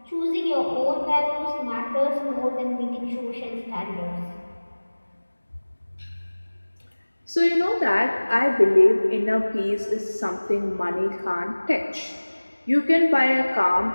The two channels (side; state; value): both; inverted; correlation -1.00